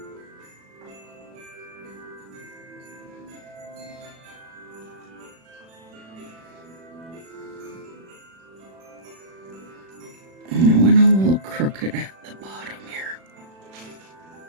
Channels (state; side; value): late; left; 36 ms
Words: I went a little crooked at the bottom here.